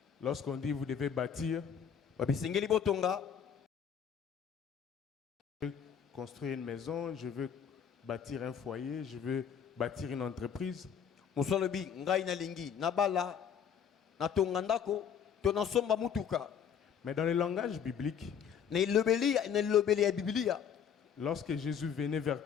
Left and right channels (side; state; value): right; quieter; 7.8 dB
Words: Lorsqu'on dit vous devez bâtir, Babisengeli botonga. construire une maison, je veux bâtir un foyer, je veux bâtir une entreprise. Musolobi ngai na lingi na bala na tonga ndako to na somba mutuka. Mais dans le langage biblique, Na lobeli ya Biblia. lorsque Jésus venait vers